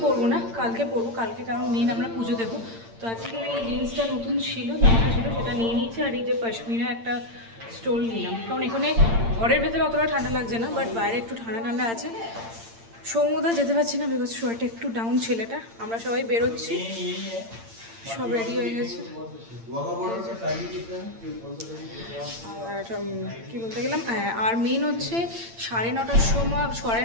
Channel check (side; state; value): left; late; 8.8 ms